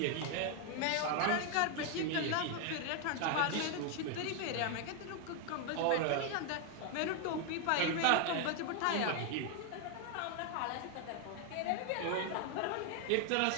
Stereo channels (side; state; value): both; different; correlation 0.01